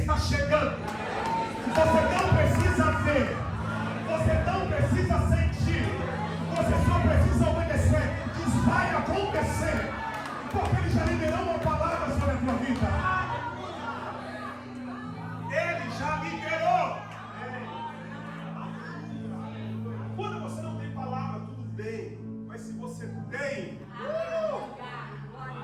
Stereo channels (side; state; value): both; identical; correlation 1.00